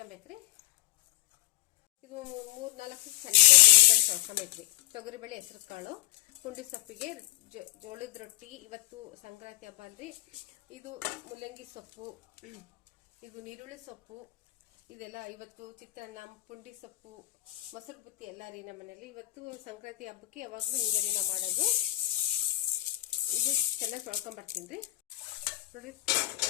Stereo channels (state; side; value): quieter; right; 17.7 dB